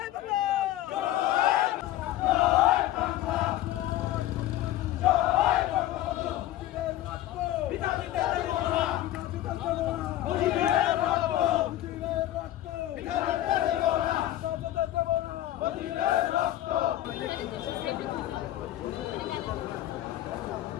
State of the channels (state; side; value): quieter; right; 13.9 dB